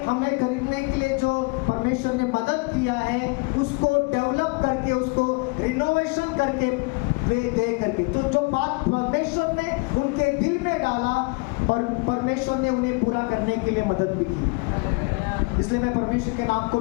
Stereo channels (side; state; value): right; quieter; 29.0 dB